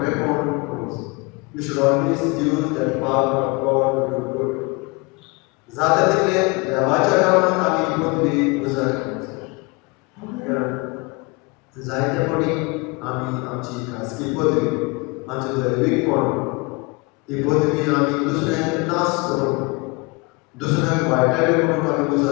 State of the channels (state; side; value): quieter; right; 27.9 dB